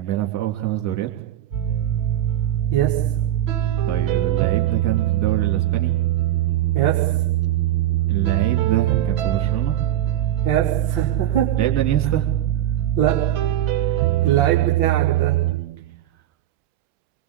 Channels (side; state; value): left; quieter; 12.2 dB